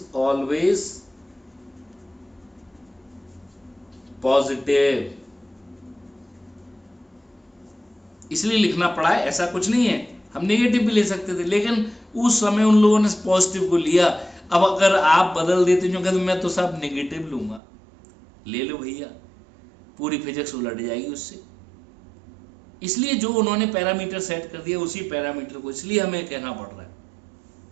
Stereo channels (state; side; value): drops out; left; at 17.6 s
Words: always positive। इसलिए लिखना पड़ा है, ऐसा कुछ नहीं है, हम नेगेटिव भी ले सकते थे, लेकिन उस समय उन लोगों ने पॉजिटिव को लिया। अब अगर आप बदल देते जो कहते मैं तो सब नेगेटिव लूंगा, ले लो भैया, पूरी फिजिक्स उलट जाएगी उससे। इसलिए जो उन्होंने पैरामीटर सेट कर दिया उसी पैरामीटर को इसलिए हमें कहना पड़ रहा है।